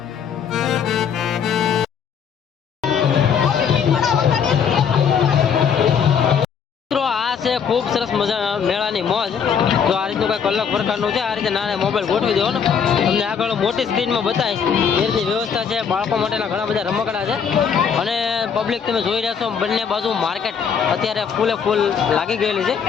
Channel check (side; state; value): right; quieter; 7.1 dB